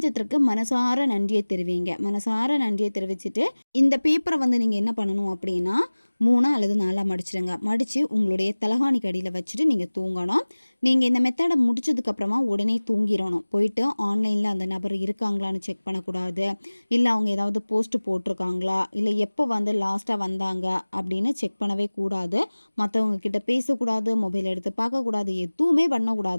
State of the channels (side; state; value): both; inverted; correlation -1.00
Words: மனசார நன்றியை தெரிவிங்க. மனசார நன்றியை தெரிவிச்சுட்டு இந்த பேப்பரை வந்து நீங்கள் என்ன பண்ணணும் அப்படின்னா 3 அல்லது 4 மடிச்சிடுங்க. மடித்து உங்களுடைய தலகாணிக்கு அடியில் வச்சுட்டு நீங்கள் தூங்கணும். நீங்கள் இந்த மெத்தடை முடிச்சதுக்கப்புறமா உடனே தூங்கிடணும். போயிட்டு ஆன்லைனில் அந்த நபர் இருக்காங்களான்னு செக் பண்ணக்கூடாது. இல்லை அவங்க ஏதாவது போஸ்ட் போட்டிருக்காங்களா, இல்லை எப்போ வந்து லாஸ்ட்டாக வந்தாங்க அப்படின்னு செக் பண்ணவே கூடாது. மற்றவங்க கிட்ட பேசக்கூடாது, மொபைல் எடுத்து பார்க்கக்கூடாது, எதுவுமே